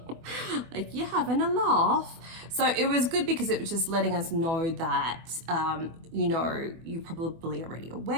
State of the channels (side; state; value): left; late; 24 ms